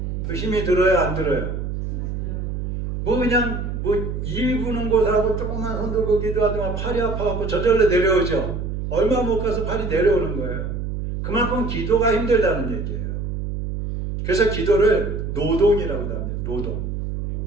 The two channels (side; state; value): right; noise; hum, 4 dB below the sound